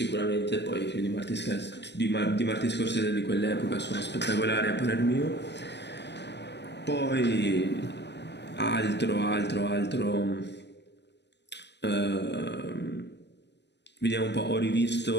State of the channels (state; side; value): late; right; 0.50 ms